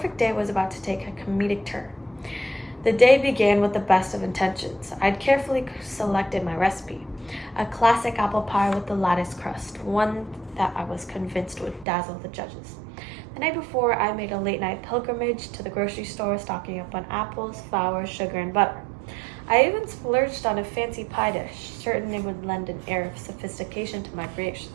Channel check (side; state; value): left; drops out; at 11.9 s